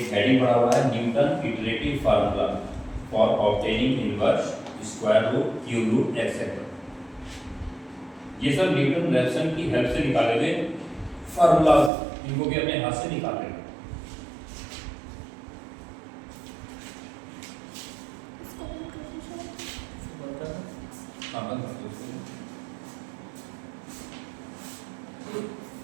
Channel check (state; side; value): drops out; left; at 11.9 s